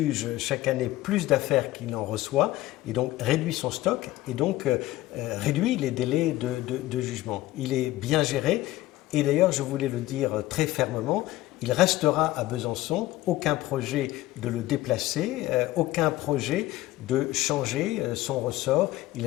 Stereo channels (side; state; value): right; quieter; 16.7 dB